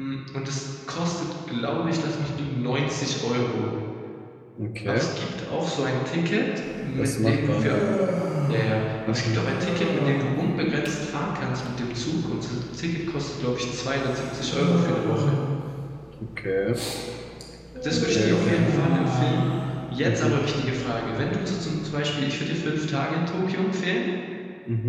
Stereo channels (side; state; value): both; identical; correlation 1.00